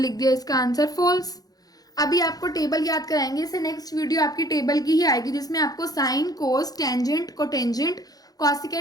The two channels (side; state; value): right; late; 0.18 ms